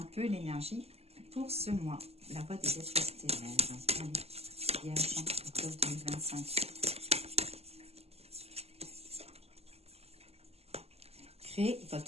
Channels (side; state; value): left; late; 0.29 ms